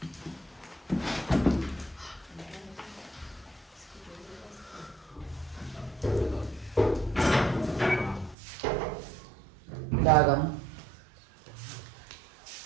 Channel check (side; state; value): left; drops out; at 8.3 s